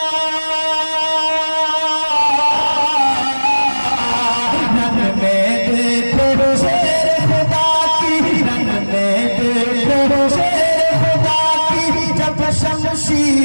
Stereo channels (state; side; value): inverted; both; correlation -1.00